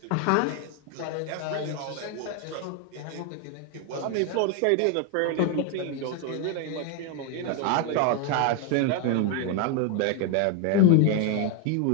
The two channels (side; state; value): both; different; correlation 0.01